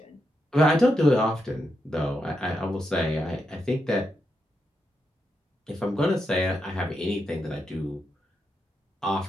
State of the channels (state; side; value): normal; both; correlation 0.84